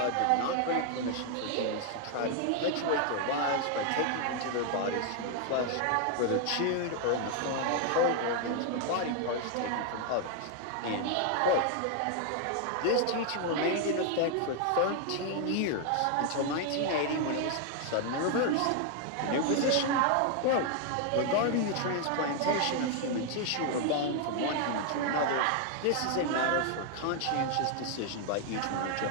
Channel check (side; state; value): both; different; correlation 0.00